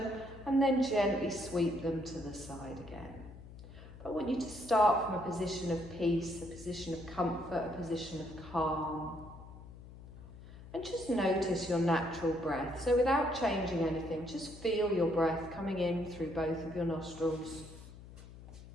and then gently sweep them to the side again. But I want you to start from a position of peace, a position of comfort, a position of calm. And just notice your natural breath. So without changing anything, just feel your breath coming in through both of your nostrils.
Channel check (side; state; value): left; noise; hum, 16 dB below the sound